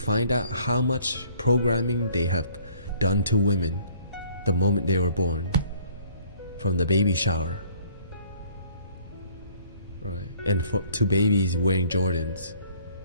out how much programming they have done to women the moment they were born, from the baby shower, right? And to babies wearing Jordans.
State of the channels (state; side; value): inverted; both; correlation -0.57